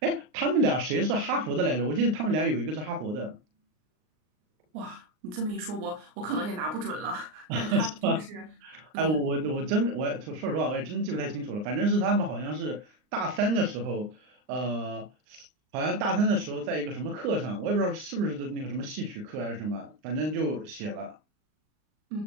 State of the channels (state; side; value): late; left; 39 ms